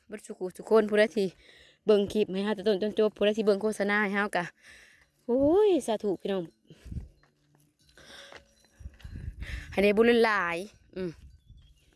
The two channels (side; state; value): both; identical; correlation 1.00